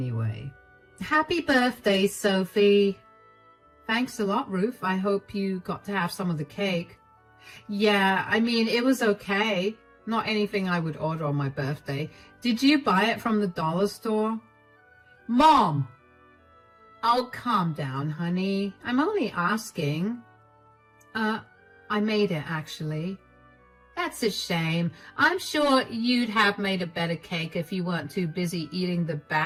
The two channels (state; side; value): identical; both; correlation 1.00